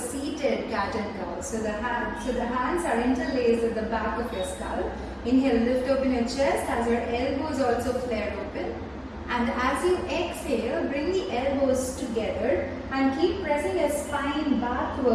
cat and cow. So the hands are interlaced at the back of your skull. Inhale, lift open your chest as your elbows also flare open. And as you exhale, bring the elbows together and keep pressing your spine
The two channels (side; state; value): both; identical; correlation 1.00